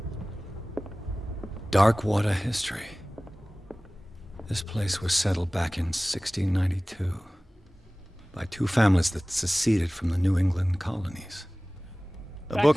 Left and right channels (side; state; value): both; normal; correlation 0.98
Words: Darkwater history. This place was settled back in 1692 by two families that seceded from the New England colonies. A